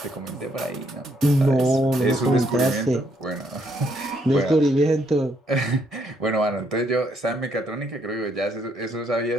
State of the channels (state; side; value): normal; both; correlation 0.72